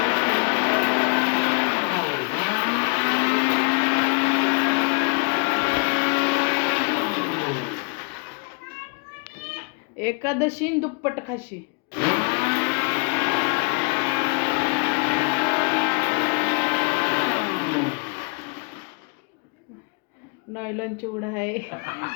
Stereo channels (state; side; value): quieter; right; 33.4 dB